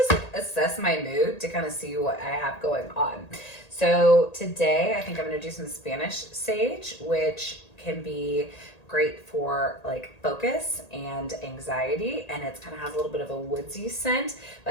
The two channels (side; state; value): right; late; 1.8 ms